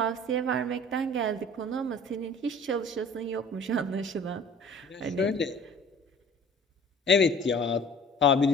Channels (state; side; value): normal; both; correlation 0.47